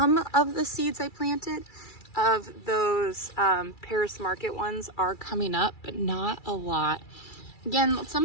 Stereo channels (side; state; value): right; late; 2.3 ms